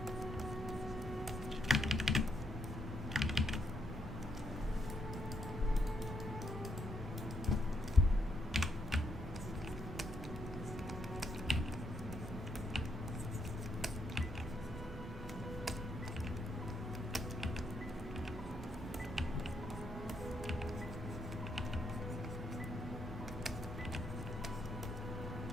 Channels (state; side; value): normal; both; correlation 0.77